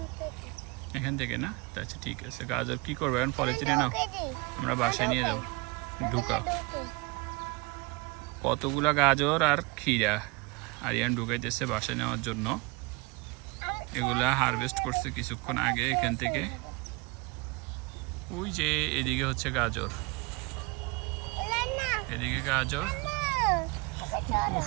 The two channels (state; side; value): quieter; left; 25.9 dB